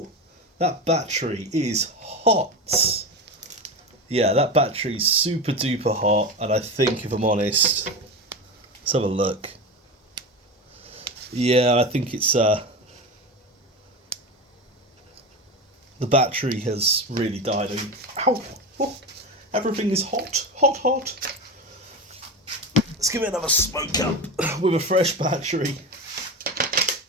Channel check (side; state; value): both; normal; correlation 0.23